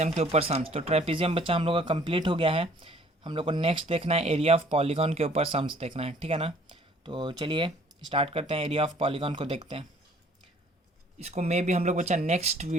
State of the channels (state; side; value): normal; both; correlation 0.57